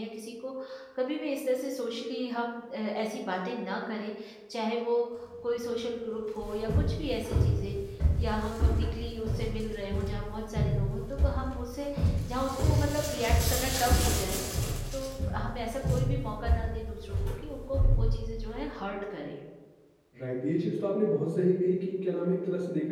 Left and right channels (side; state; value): both; identical; correlation 1.00